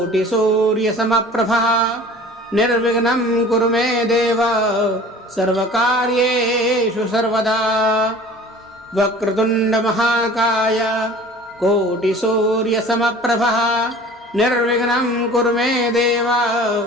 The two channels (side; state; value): both; normal; correlation 0.45